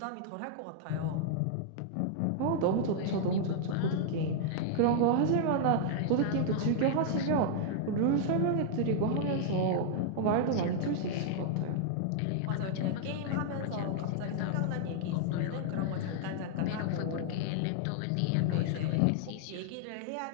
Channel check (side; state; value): both; different; correlation -0.01